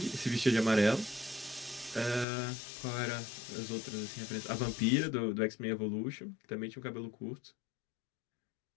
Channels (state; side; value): drops out; right; at 2.2 s